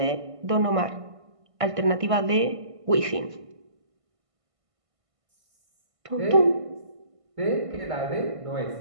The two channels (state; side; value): late; left; 1.5 ms